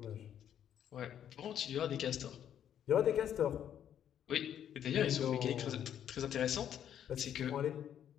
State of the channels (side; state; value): right; quieter; 9.8 dB